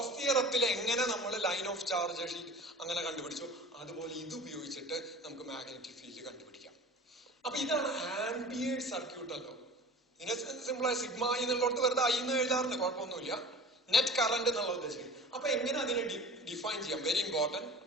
തിയറത്തിൽ എങ്ങനെ നമ്മൾ ലൈൻ ഓഫ് ചാർജ് ഷീറ്റ് അങ്ങനെ കണ്ടുപിടിച്ചു, അതുപോലെ ഇത് ഉപയോഗിച്ചിട്ട് നമുക്ക് മാഗ്നറ്റിക് ഫീൽഡ് കണ്ടുപിടിക്കാം. അപ്പൊ ഇതാണ് ആംപിയേഴ്സ് സർക്യൂട്ടൽ ലോ. ഇതിനെ സിമ്പിളായി സിഗ്മ എന്നുള്ളടത്ത് വെറുതെ I എന്ന് എഴുതാറുണ്ട്, കുഴപ്പമൊന്നുമില്ല. നെറ്റ് കറന്റ് എന്നുള്ള ഉദ്ദേശിക്കുന്നത്. അപ്പൊ എങ്ങനെ അതിനെ ഡിഫൈൻ ചെയ്യാം? Very important.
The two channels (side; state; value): both; normal; correlation 0.40